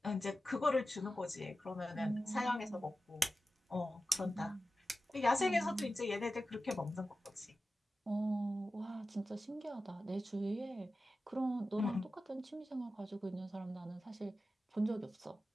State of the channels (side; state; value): both; normal; correlation 0.93